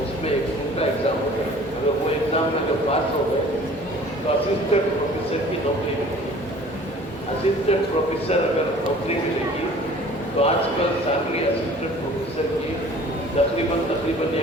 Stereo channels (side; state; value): both; normal; correlation 0.48